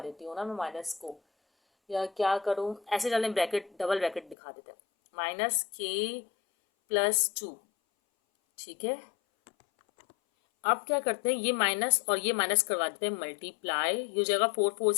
देती हूँ ना मैं माइनस को, या क्या करूँ, ऐसे डालने ब्रैकेट, डबल ब्रैकेट दिखा देते हैं, -k+2। ठीक है, अब क्या करते हैं, ये माइनस और ये माइनस करवा देते हैं मल्टीप्लाई। ये हो जाएगा 4 4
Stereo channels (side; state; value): right; drops out; at 4.4 s